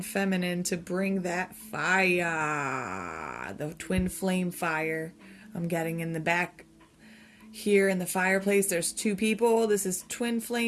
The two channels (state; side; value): identical; both; correlation 1.00